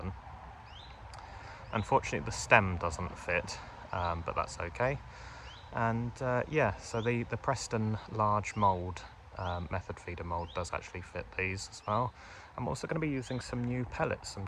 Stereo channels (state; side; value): identical; both; correlation 1.00